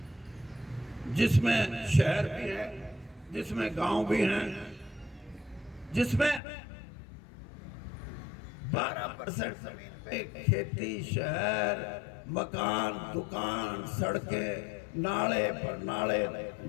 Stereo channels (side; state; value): right; drops out; at 6.4 s